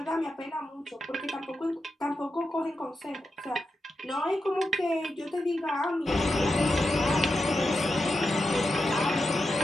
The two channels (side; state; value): both; normal; correlation 0.88